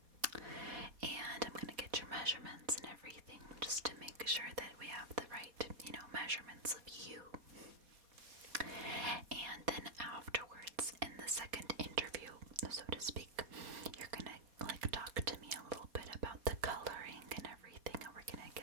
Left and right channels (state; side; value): late; left; 4.2 ms